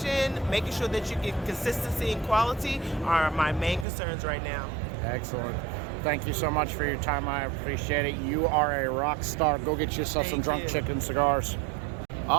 making sure that you get consistency and quality are my main concerns right now. Excellent. Thank you so much for your time. I appreciate it. You are a rock star. Go get yourself some Drunk Chicken cigars.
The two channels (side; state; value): left; drops out; at 3.9 s